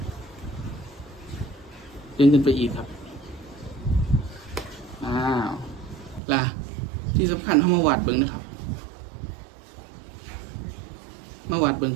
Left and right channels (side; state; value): left; drops out; at 6.2 s